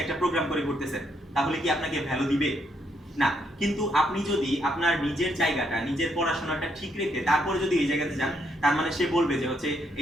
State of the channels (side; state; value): both; normal; correlation 0.75